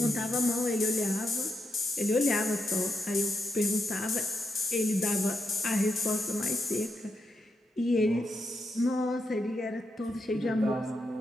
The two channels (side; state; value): both; normal; correlation 0.83